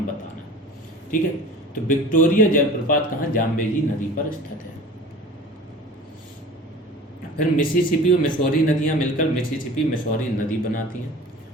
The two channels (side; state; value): both; normal; correlation 0.41